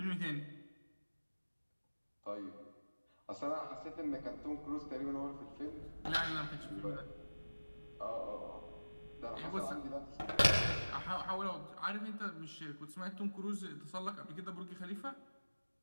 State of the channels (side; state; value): both; inverted; correlation -1.00